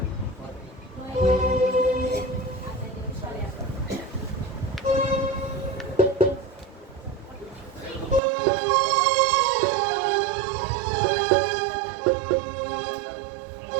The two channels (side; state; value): left; drops out; at 8.2 s